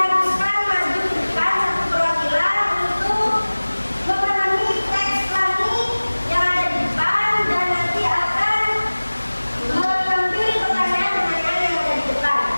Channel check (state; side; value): inverted; both; correlation -1.00